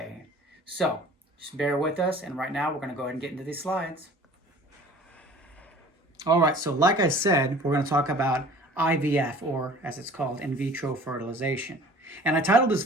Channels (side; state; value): both; normal; correlation 0.47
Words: So just bear with us, and right now we're going to go ahead and get into these slides. All right, so like I said, we're going to talk about IVF, or as it's called, in vitro fertilization. And I titled this